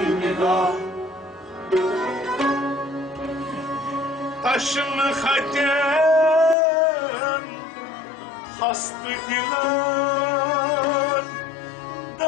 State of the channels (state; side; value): drops out; right; at 6.6 s